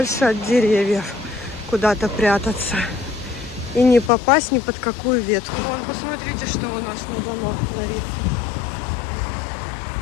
от деревьев. Куда-то прятаться. И не попасть ни под какую ветку. Вон, посмотрите, что у нас на домах творится.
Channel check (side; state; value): right; drops out; at 4.1 s